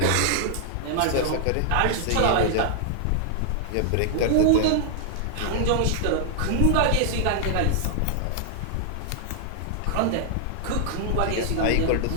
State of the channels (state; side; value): different; both; correlation 0.00